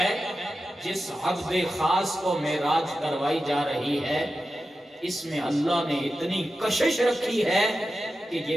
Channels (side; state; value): both; normal; correlation 0.92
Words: جس عبد خاص کو معراج کروائی جا رہی ہے اس میں اللہ نے اتنی کشش رکھی ہے کہ